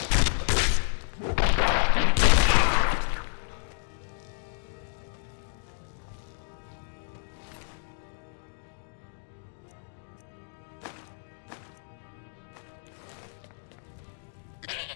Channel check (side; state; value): right; silent; digital silence